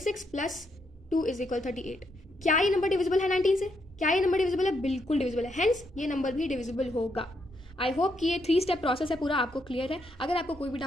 + 2 = 38। क्या ये नंबर डिविजिबल है 19 से, क्या ये नंबर डिविजिबल है, बिल्कुल डिविजिबल है, हेंस ये नंबर भी डिविजिबल होगा। आई होप कि ये 3 स्टेप प्रोसेस है पूरा आपको क्लियर है। अगर आपको कोई भी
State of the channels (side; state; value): both; normal; correlation 0.77